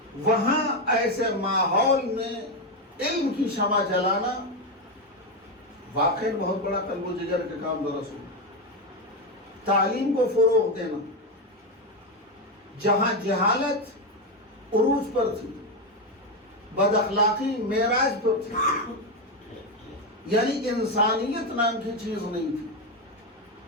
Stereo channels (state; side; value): normal; both; correlation 0.09